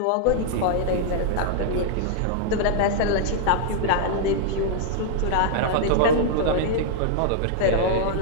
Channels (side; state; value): both; different; correlation -0.01